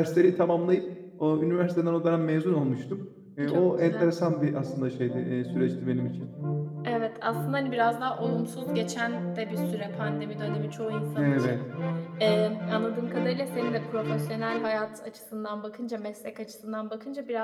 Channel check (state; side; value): identical; both; correlation 1.00